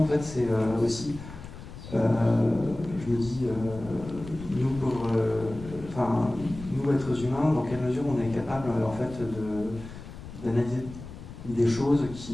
en fait, c'est aussi, je me dis, nous, êtres humains, dans quelle mesure on est capable, en fait, d'analyser des choses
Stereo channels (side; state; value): left; noise; rumble, 14 dB below the sound